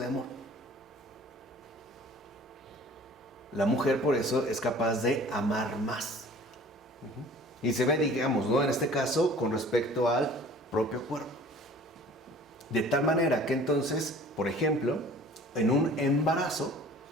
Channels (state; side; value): normal; both; correlation 0.48